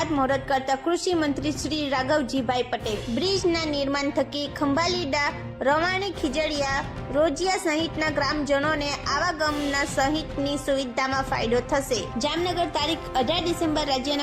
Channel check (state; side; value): identical; both; correlation 1.00